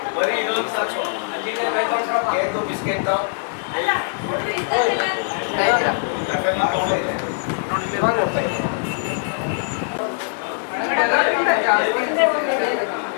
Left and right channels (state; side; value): silent; right; 64 dB below the other